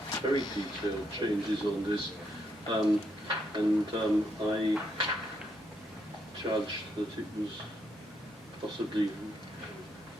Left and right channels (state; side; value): normal; both; correlation 0.77